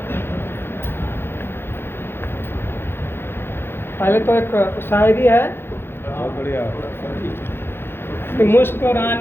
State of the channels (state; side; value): late; right; 0.11 ms